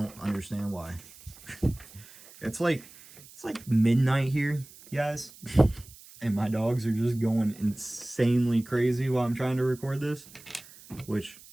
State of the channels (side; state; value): right; noise; hiss, 21 dB below the sound